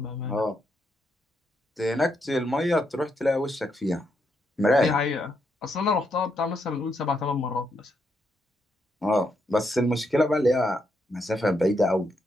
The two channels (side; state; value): both; normal; correlation 0.79